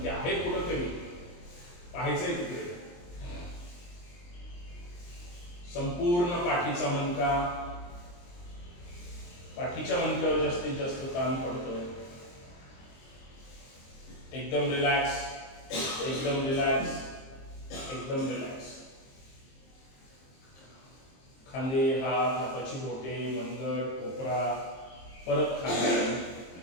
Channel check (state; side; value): late; right; 23 ms